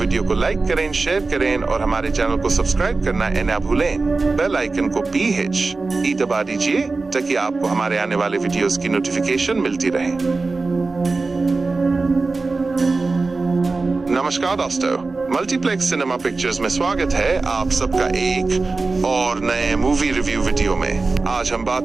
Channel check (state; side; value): quieter; left; 3.8 dB